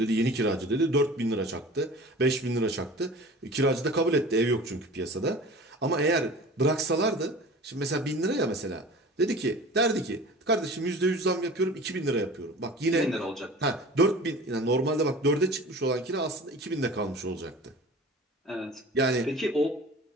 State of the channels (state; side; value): normal; both; correlation 0.40